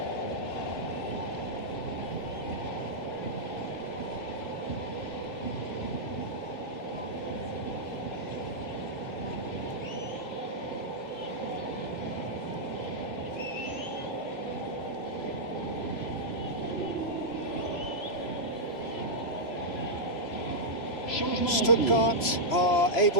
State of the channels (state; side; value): late; right; 3.0 ms